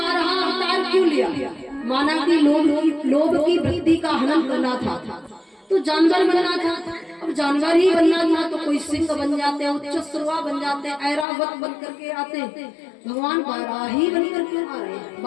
अवतार क्यों लिया? माना कि लोभ की वृत्ति का हनन करना था तो जानवर बनना था। अब जानवर ही बनना था तो कोई सिंह बन जाते, उच्च श्रवा बन जाते, ऐरावत बन करके आते। भगवान बारहा ही बनकर क्यों आ रहे हैं?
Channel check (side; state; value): right; drops out; at 11.2 s